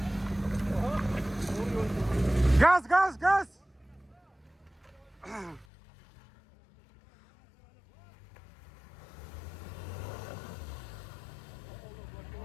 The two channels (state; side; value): drops out; right; at 5.7 s